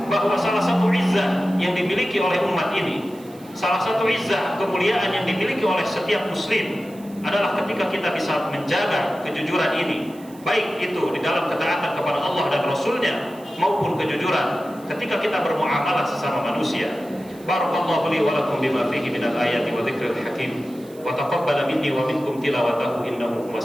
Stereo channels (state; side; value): noise; right; hiss, 24 dB below the sound